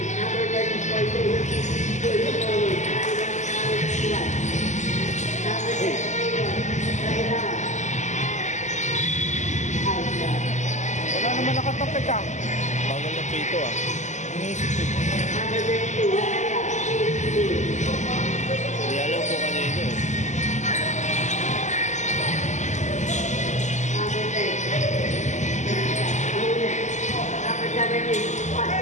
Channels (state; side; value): late; right; 0.34 ms